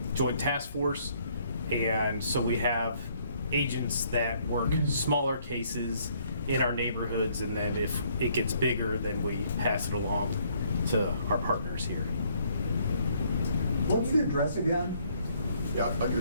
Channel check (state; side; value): inverted; both; correlation -0.66